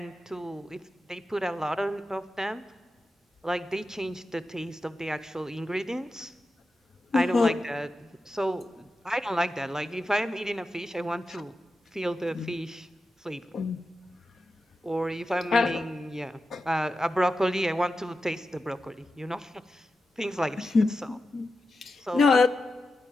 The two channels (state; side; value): normal; both; correlation 0.90